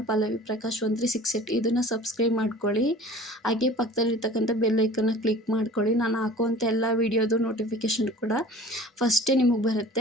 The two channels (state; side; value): normal; both; correlation 0.44